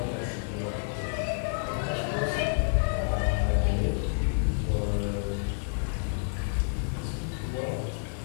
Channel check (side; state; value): right; silent; digital silence